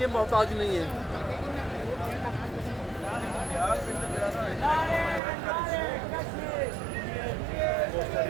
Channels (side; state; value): left; drops out; at 5.2 s